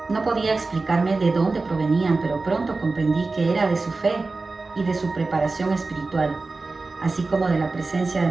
no podía explicarme de dónde provenían, pero pronto comprendí que era de su fe y de su preparación espiritual, así como de la presencia de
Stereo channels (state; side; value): quieter; left; 3.7 dB